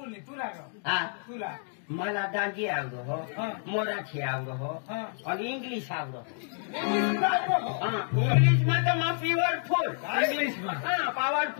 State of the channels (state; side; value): silent; right; 57 dB below the other